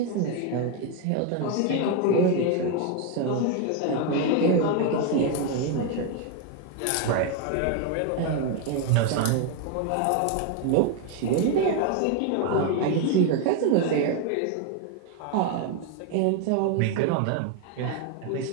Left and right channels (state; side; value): different; both; correlation 0.01